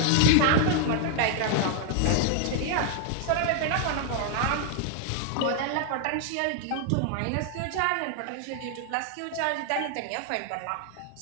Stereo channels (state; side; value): different; both; correlation 0.00